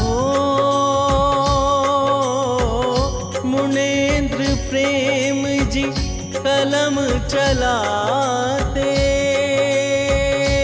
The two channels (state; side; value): identical; both; correlation 1.00